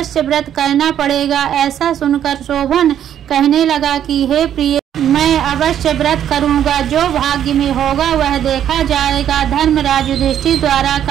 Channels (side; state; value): left; quieter; 10.1 dB